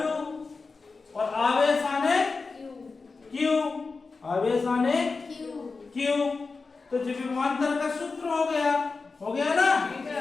और आवेश आने Q, आवेश आने Q। तो जी विभवांतर का सूत्र हो गया ना?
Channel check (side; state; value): right; quieter; 4.2 dB